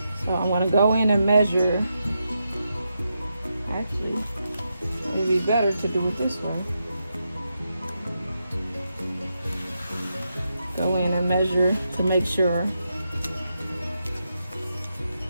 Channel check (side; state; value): both; inverted; correlation -0.85